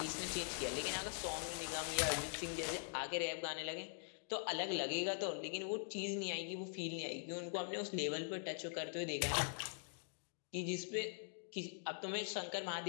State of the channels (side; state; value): right; silent; digital silence